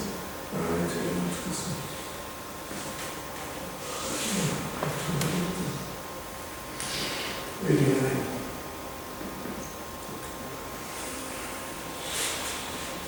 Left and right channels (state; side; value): identical; both; correlation 1.00